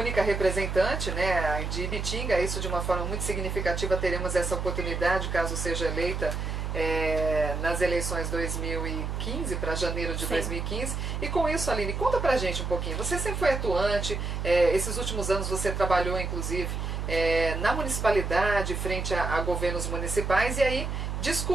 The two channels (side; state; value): right; noise; hum, 3 dB below the sound